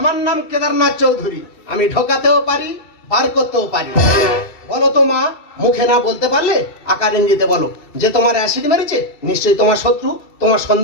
নাম কেদারনাথ চৌধুরী। আমি ঢোকাতেও পারি, বার করতেও পারি। বলো তো মা, মুখে না বলতে পারলে আকার ইঙ্গিতে বলো যে তোমার অ্যাসিড মেরেছে নিশ্চয়ই তোমার শত্রু। তোমার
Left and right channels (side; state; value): right; late; 2.7 ms